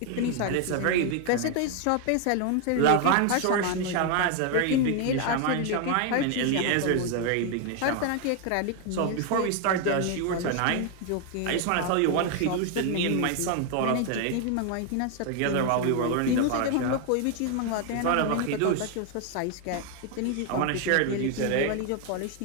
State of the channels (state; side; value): different; both; correlation 0.01